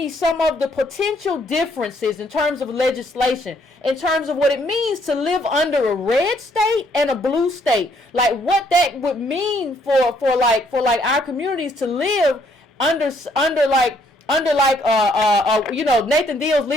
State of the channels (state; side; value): normal; both; correlation 0.68